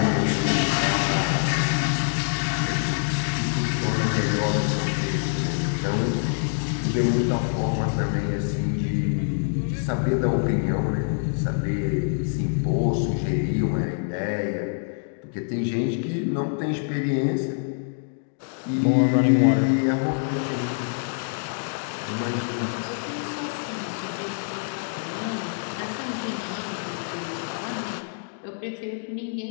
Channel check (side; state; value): right; silent; digital silence